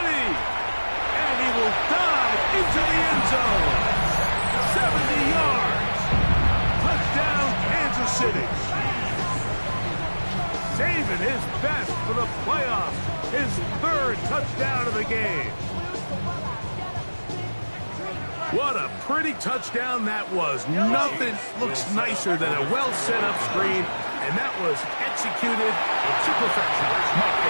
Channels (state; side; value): inverted; both; correlation -1.00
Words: And he will dive into the end zone. 70 yards. Touchdown, Kansas City. Saving his best for the playoffs. His 3rd touchdown of the game. What a pretty touchdown that was. Nothing looks nicer than a well-set-up screen, and that was executed to perfection. Mike,